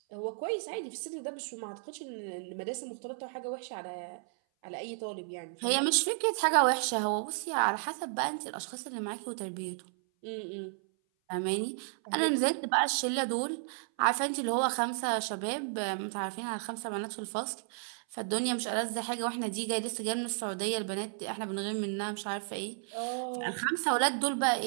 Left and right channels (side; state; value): left; silent; 56 dB below the other